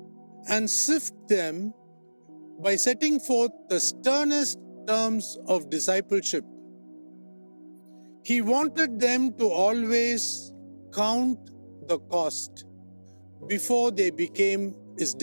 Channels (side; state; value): both; inverted; correlation -1.00